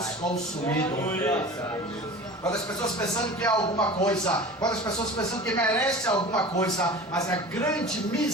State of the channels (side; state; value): both; normal; correlation 0.37